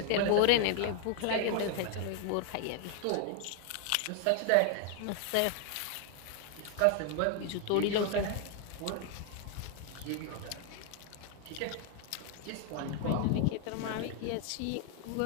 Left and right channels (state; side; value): different; both; correlation 0.00